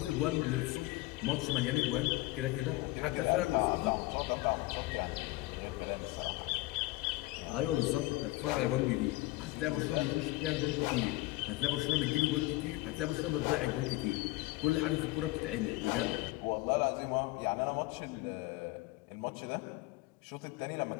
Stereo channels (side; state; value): right; quieter; 19.9 dB